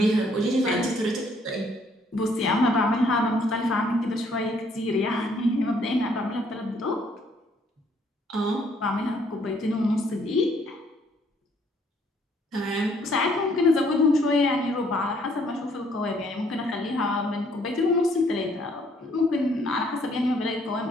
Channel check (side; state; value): both; normal; correlation 0.65